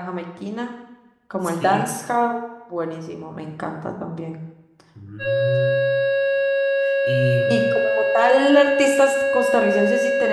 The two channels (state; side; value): identical; both; correlation 1.00